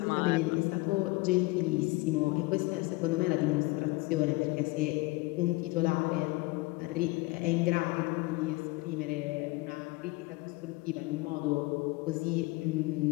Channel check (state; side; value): quieter; right; 22.9 dB